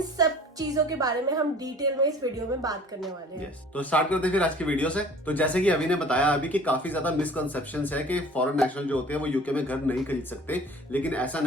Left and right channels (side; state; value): both; normal; correlation 0.48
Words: सब चीजों के बारे में हम डिटेल में इस वीडियो में बात करने वाले हैं। तो स्टार्ट करते हैं फिर आज की वीडियो से। तो जैसे कि अभी ने बताया अभी कि काफी ज्यादा मिसकंसेप्शंस है कि फॉरेन नेशनल जो होते हैं वो यूके में घर नहीं खरीद सकते, लेकिन ऐसा